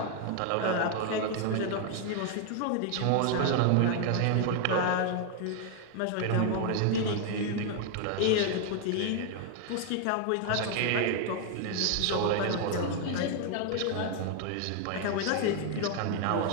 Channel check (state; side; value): different; both; correlation 0.00